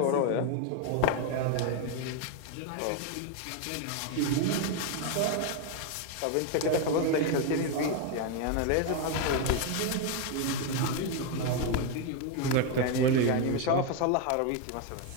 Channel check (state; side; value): different; both; correlation 0.01